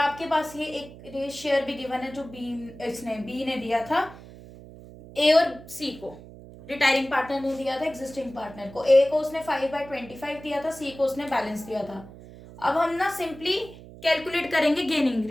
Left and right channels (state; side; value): noise; right; hum, 17 dB below the sound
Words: पास ये एक शेयर भी गिवन है जो बी ने दिया था ए और सी को, रिटायरिंग पार्टनर ने दिया था एग्जिस्टिंग पार्टनर को। ए को उसने 5/25 दिया था, सी को उसने बैलेंस दिया था। अब हम ना सिंपली कैलकुलेट करेंगे गेनिंग